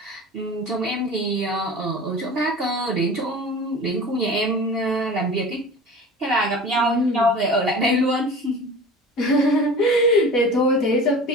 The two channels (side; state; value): both; normal; correlation 0.38